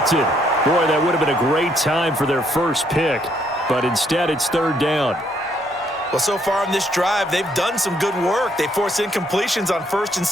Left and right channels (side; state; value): both; normal; correlation 0.70